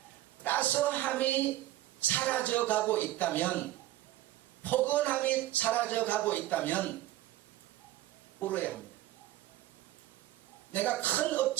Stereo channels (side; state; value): left; quieter; 15.0 dB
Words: 따스함이 사라져가고 있다면, 포근함이 사라져가고 있다면 울어야 합니다. 내가 큰